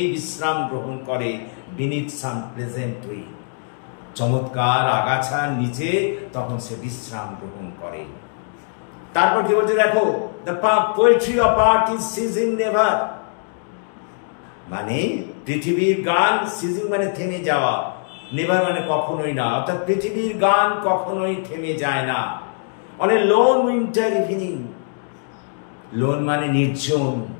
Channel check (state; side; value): silent; right; digital silence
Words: বিশ্রাম গ্রহণ করে। বিনিথ সাম প্লেজেন্ট উইড, চমৎকার আগাছার নিচে তখন সে বিশ্রাম গ্রহণ করে। তারপর কি বলছে দেখো, the poetry of art is seizing never, মানে পৃথিবীর গান, সিজিং মানে থেমে যাওয়া, নেভার মানে কখনোই না, অর্থাৎ পৃথিবীর গান কখনোই থেমে যায় না। On a loan winter evening, loan মানে নির্জন,